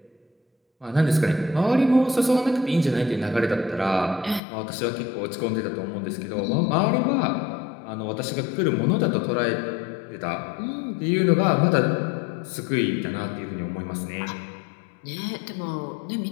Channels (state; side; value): drops out; right; at 4.4 s